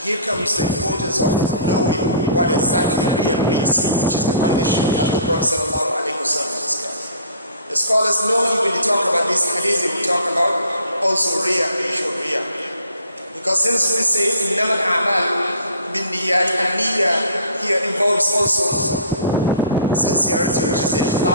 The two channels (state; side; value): inverted; both; correlation -0.49